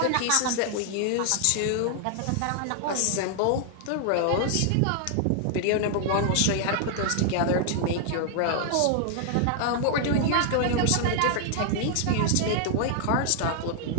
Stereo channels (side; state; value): both; different; correlation 0.00